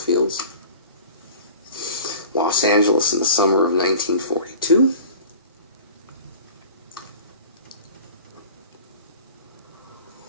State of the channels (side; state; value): both; inverted; correlation -0.42